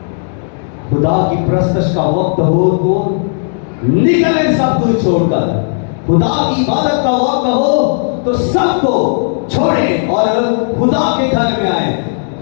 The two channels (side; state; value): right; silent; digital silence